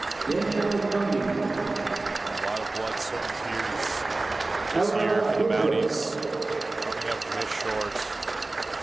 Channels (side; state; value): left; quieter; 3.1 dB